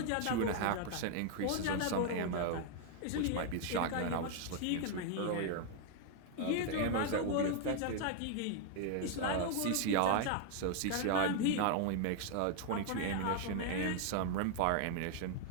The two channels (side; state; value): both; different; correlation 0.00